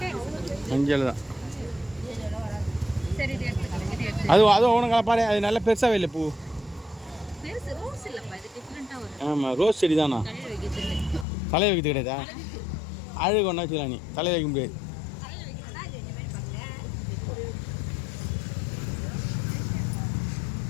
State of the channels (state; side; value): drops out; right; at 11.2 s